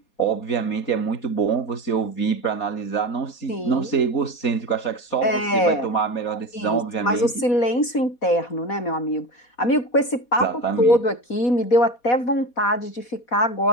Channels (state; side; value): late; right; 4.2 ms